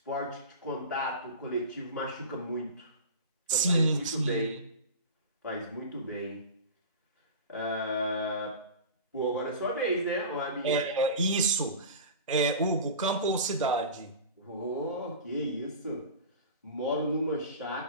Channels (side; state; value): both; inverted; correlation -0.32